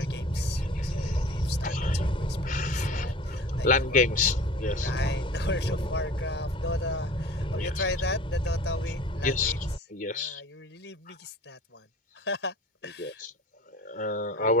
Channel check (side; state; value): both; normal; correlation 0.43